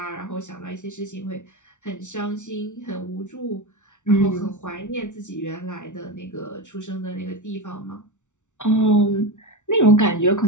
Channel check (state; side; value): late; right; 0.85 ms